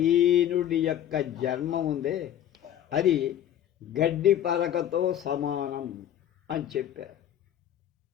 యొక్క జన్మ ఉందే అది గడ్డి పరకతో సమానం అని చెప్పారు.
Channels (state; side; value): quieter; right; 10.9 dB